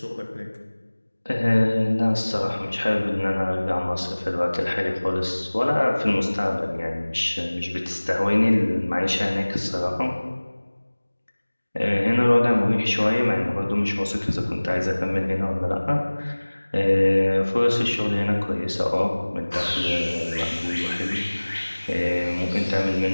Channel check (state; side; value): inverted; both; correlation -1.00